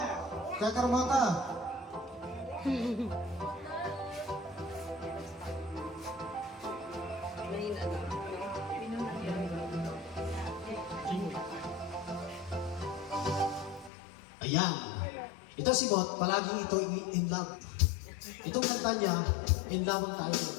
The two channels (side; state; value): right; drops out; at 13.9 s